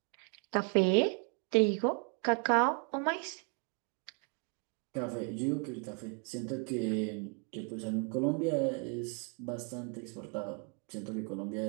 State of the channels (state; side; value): quieter; left; 38.0 dB